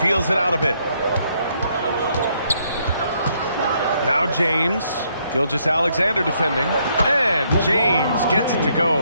it out a bit. Now James. Gilgeous-Alexander defending. And James gets it to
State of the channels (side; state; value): both; inverted; correlation -0.72